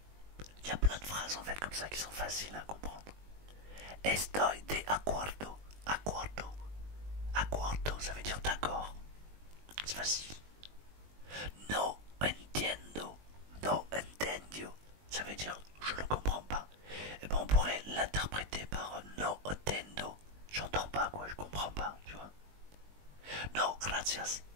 Il y a plein de phrases en fait comme ça qui sont faciles à comprendre. Estoy de acuerdo. Acuerdo. Acuerdo, ça veut dire d'accord. C'est facile. No entiendo. No entendio. Ça veut dire je ne comprends pas. Et ben on pourrait l'interpréter par no entendo. J'entends pas quoi, je comprends pas, tu vois. No gracias.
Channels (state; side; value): late; left; 20 ms